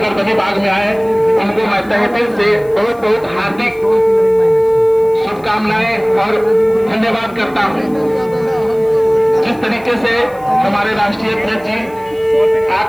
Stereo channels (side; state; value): left; noise; hiss, 27 dB below the sound